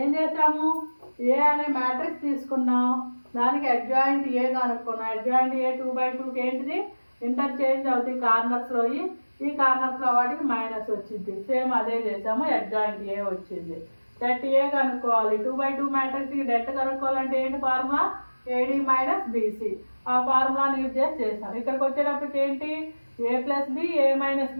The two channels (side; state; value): both; inverted; correlation -1.00